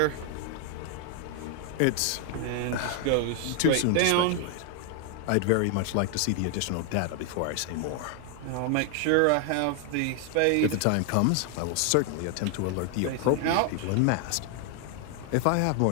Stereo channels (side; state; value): both; different; correlation 0.00